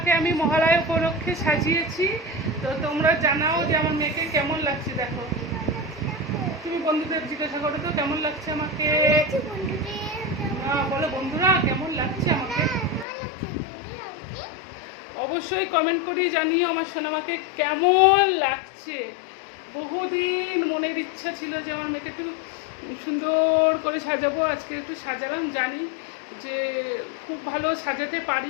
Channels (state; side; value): drops out; right; at 13.1 s